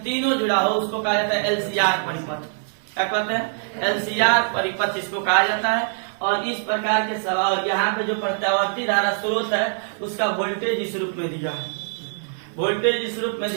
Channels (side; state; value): left; silent; 63 dB below the other